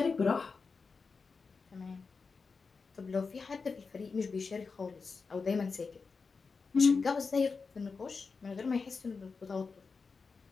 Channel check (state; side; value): quieter; right; 4.7 dB